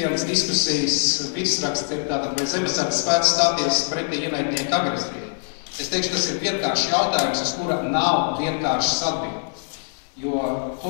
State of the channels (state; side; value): silent; right; digital silence